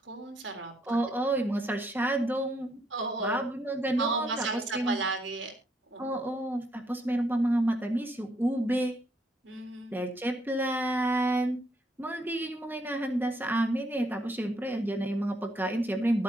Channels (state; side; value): normal; both; correlation 0.73